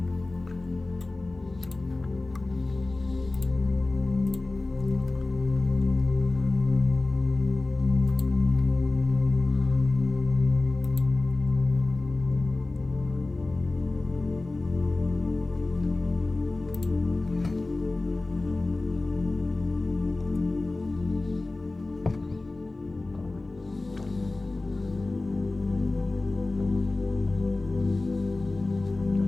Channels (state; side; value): quieter; right; 3.1 dB